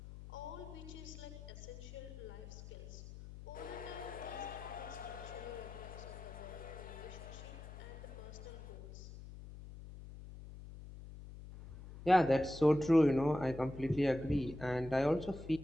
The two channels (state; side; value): noise; left; hum, 13 dB below the sound